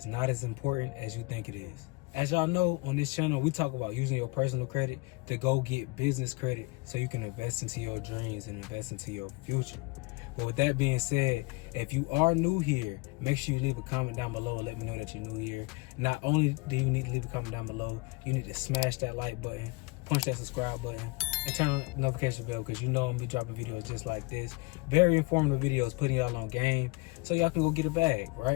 not as important as you think it is. As y'all know, on this channel we talk about using your personal credit to go get business credit so you can invest into your dreams and invest into your future. But with that being said, if you are new here, make sure you leave a comment down below. Let me know that you're new here. Not only do you need to leave a comment down below, you need to smash that like button, punch that subscribe button, and turn on the notification bell, because you know I'm gonna be dropping videos just like this. Very informative videos, putting y'all on game so y'all can go get a bag,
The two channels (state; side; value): quieter; right; 25.7 dB